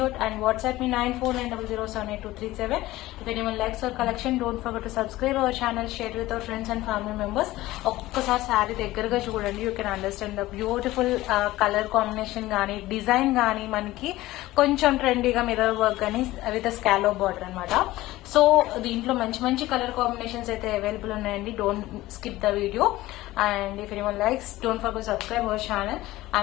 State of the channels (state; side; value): quieter; right; 17.2 dB